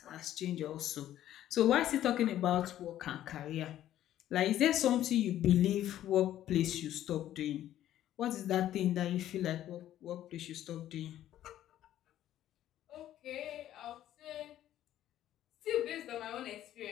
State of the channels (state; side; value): quieter; right; 12.4 dB